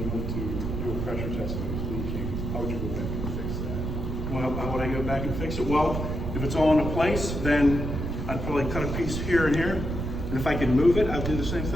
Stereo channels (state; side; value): noise; right; rumble, 3 dB below the sound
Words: went to do a pressure test and it was leaking, how would you go back and fix that? Well, how would I go back and fix it? Well, if it's all in place, then I'd probably cut a piece here and here. And if I could move it, I'd do the same